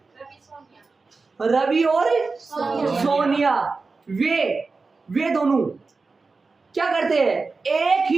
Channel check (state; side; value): quieter; left; 4.1 dB